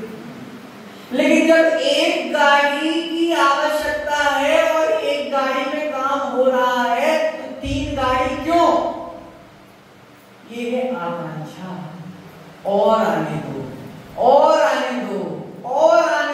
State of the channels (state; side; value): identical; both; correlation 1.00